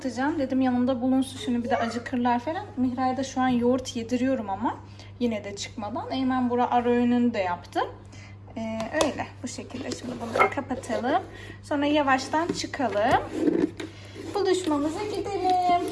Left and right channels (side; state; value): both; identical; correlation 1.00